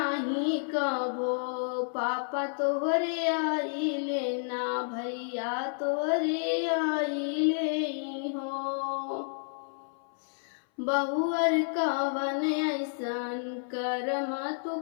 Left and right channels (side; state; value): right; silent; 58 dB below the other